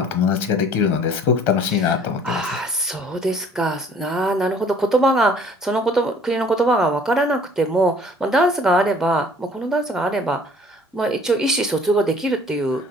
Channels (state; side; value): normal; both; correlation 0.54